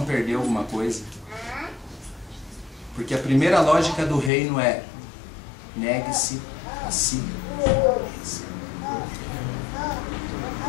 perdeu alguma coisa. Porque a primeira lógica do reino é negue-se a si.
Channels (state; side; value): drops out; right; at 4.3 s